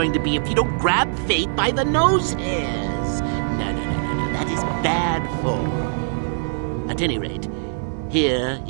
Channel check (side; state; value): left; silent; digital silence